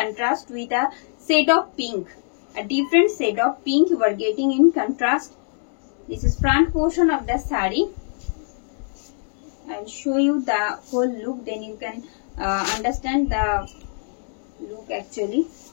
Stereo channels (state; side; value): silent; right; digital silence